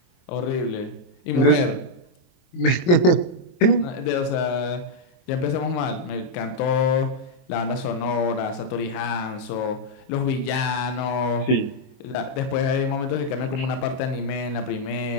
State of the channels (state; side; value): late; right; 23 ms